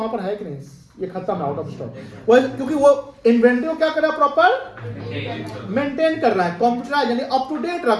पर है कि नहीं, ये खत्म है, आउट ऑफ स्टॉक। वो क्योंकि वो इन्वेंट्री को क्या कर रहा है, प्रॉपर मेंटेन कर रहा है, कंप्यूटराइज यानी अप टू डेट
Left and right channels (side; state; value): both; identical; correlation 1.00